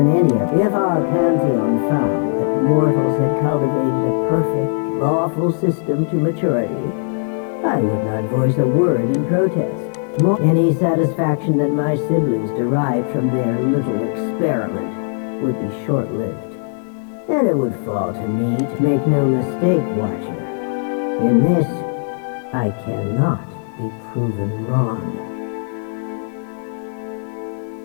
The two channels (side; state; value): right; silent; digital silence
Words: any of. If our pantheon found that mortals had cultivated a perfect, lawful system to maturity, I would not voice a word in protest. Any satisfaction that my siblings derived from their little experiment would be short-lived. And it would fall to me to make no mistake, Watcher. In this, I cannot be proven wrong.